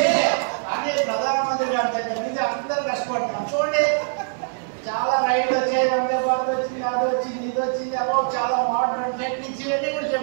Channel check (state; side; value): silent; left; 61 dB below the other